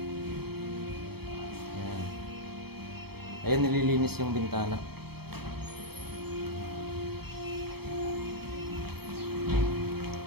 Ayan. Ayun, nililinis yung bintana.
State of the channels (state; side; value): late; left; 0.96 ms